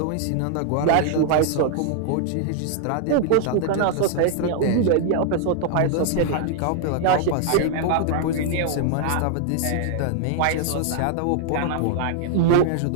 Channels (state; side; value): different; both; correlation 0.00